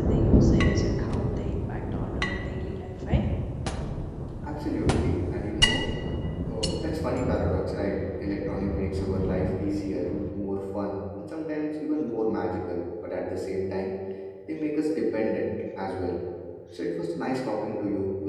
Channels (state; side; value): identical; both; correlation 1.00